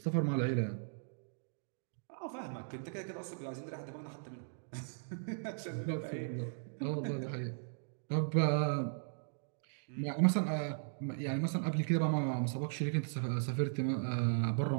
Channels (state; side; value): silent; left; digital silence